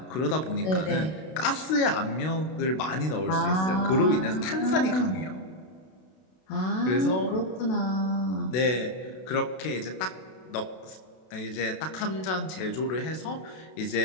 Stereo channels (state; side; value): late; right; 32 ms